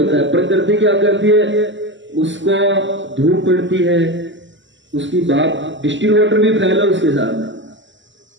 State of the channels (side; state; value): left; late; 0.54 ms